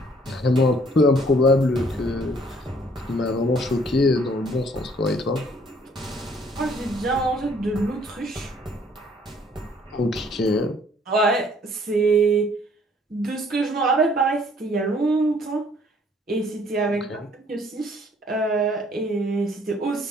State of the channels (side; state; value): both; normal; correlation 0.60